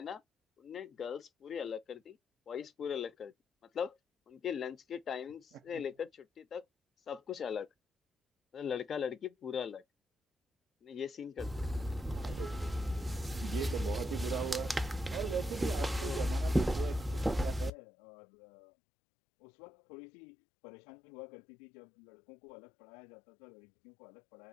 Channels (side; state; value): right; drops out; at 17.7 s